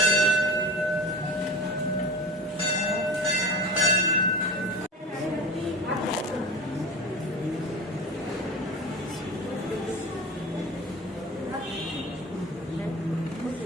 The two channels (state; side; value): normal; both; correlation 0.32